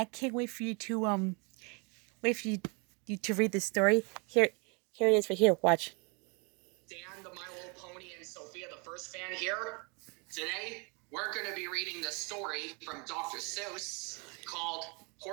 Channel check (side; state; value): left; quieter; 32.7 dB